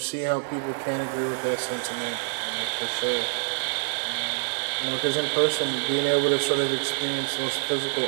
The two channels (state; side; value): silent; left; digital silence